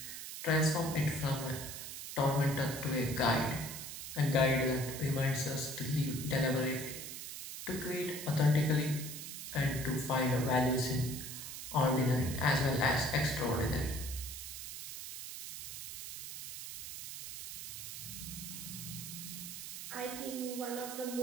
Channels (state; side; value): noise; right; hiss, 8 dB below the sound